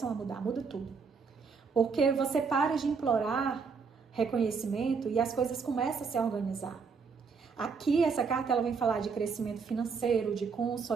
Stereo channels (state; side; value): quieter; left; 5.3 dB